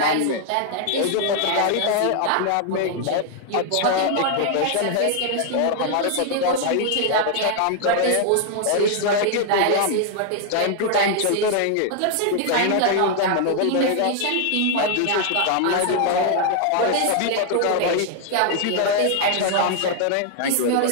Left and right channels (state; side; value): different; both; correlation 0.00